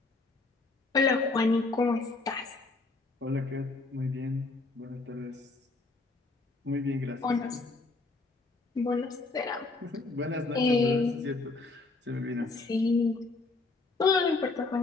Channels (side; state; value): right; quieter; 3.6 dB